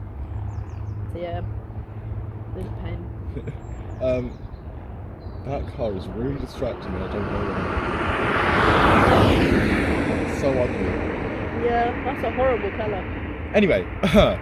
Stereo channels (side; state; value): both; identical; correlation 1.00